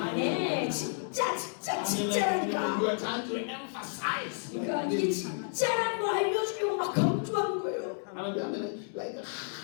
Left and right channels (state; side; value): silent; right; digital silence